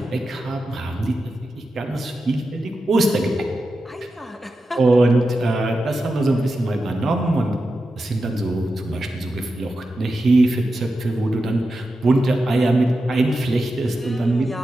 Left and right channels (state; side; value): normal; both; correlation 0.90